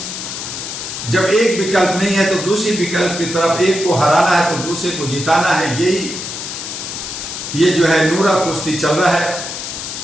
जब एक विकल्प नहीं है तो दूसरी विकल्प की तरफ, एक को हराना है तो दूसरे को जिताना है। ये जो है नूरा कुश्ती चल रहा है।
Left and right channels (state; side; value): noise; left; hiss, 7 dB below the sound